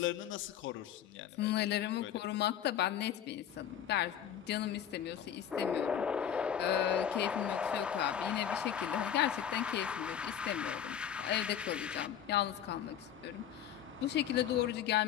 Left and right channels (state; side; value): quieter; right; 9.5 dB